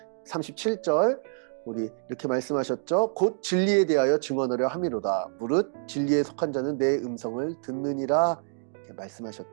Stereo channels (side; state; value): left; silent; digital silence